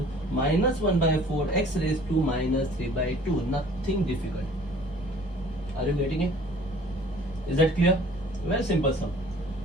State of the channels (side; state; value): both; normal; correlation 0.52